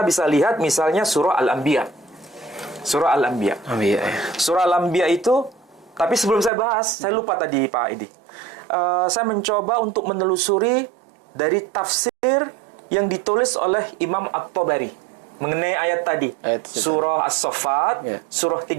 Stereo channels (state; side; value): drops out; left; at 6.5 s